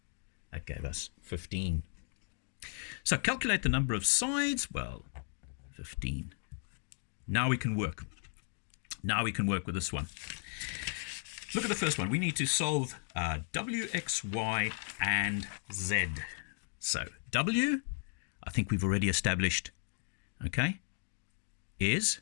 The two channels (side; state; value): right; silent; 54 dB below the other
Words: That gave us 15. So calculate the number of sides. Well, 15. Now we can work. Now we can work with this one. Look at the first one. We need to solve W, X, Y, and Z. So W, I think we've already established, okay, is